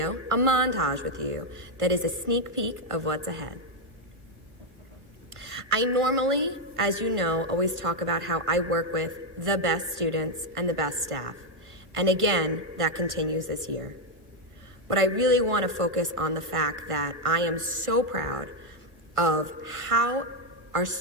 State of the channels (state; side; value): late; left; 1.5 ms